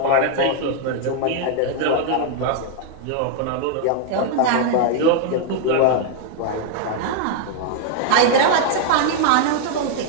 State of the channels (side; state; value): both; different; correlation 0.00